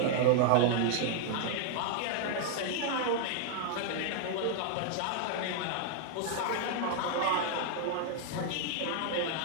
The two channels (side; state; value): both; different; correlation 0.00